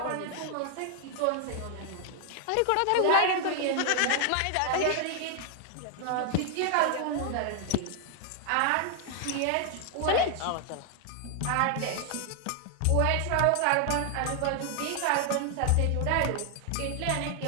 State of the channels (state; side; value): different; both; correlation 0.00